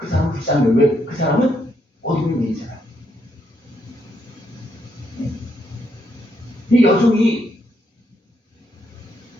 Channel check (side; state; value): both; normal; correlation 0.76